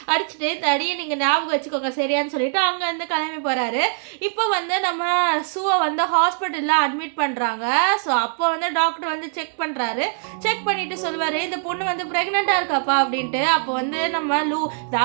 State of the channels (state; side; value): silent; left; 64 dB below the other